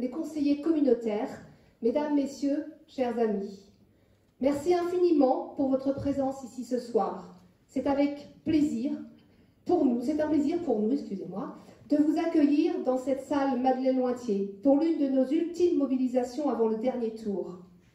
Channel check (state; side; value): identical; both; correlation 1.00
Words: conseillers communautaires, Mesdames, Messieurs, chers amis. Merci infiniment pour votre présence ici ce soir. C'est avec plaisir pour nous, excusez-moi, de vous accueillir dans cette salle Madeleine-Lointier pour l'une de nos ultimes mobilisations avant le dernier tour.